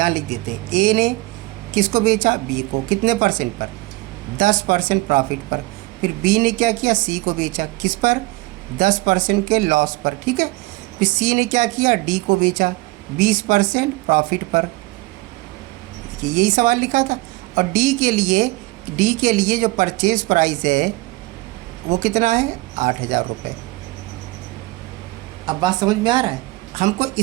लिख देते हैं। ए ने किसको बेचा, बी को, कितने परसेंट पर, 10% प्रॉफिट पर। फिर बी ने क्या किया, सी को बेचा, किस पर, 10% के लॉस पर। ठीक है, फिर सी ने क्या किया, डी को बेचा 20% प्रॉफिट पर। यही सवाल लिखा था। और डी के लिए जो परचेज प्राइस है वो कितना है, 8,000 रुपये। अब बात समझ में आ रहा है, हमको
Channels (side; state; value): left; quieter; 21.5 dB